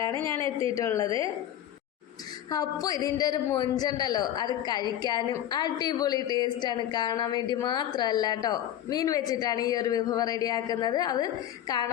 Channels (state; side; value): quieter; right; 11.5 dB